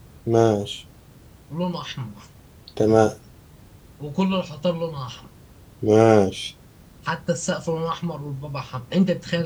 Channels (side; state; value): both; identical; correlation 1.00